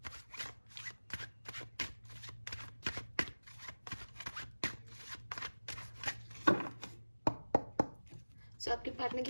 सो आपके पार्टनर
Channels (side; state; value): both; inverted; correlation -1.00